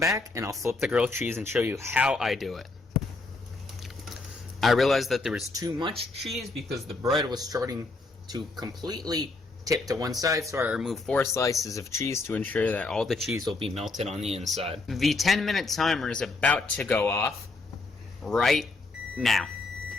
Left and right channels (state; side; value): quieter; right; 3.5 dB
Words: and I'll flip the grilled cheese and show you how I do it. I realized that there was too much cheese because the bread was starting to completely tip to one side, so I removed 4 slices of cheese to ensure that all the cheese will be melted on the inside. The 10-minute timer is about to go off right now,